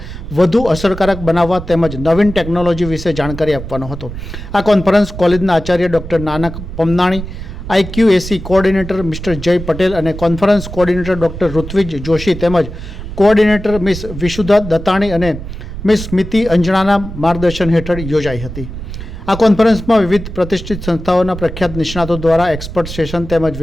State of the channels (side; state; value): right; noise; rumble, 10 dB below the sound